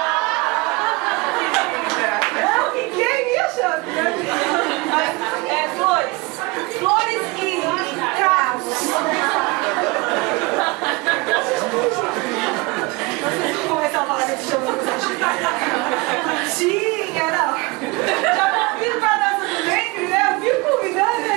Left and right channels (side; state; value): left; quieter; 25.1 dB